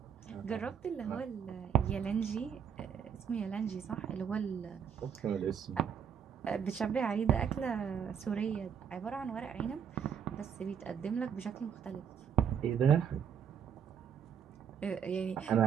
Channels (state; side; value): quieter; left; 7.8 dB